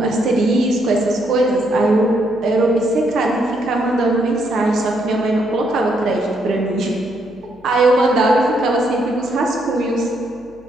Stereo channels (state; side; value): noise; left; hum, 27 dB below the sound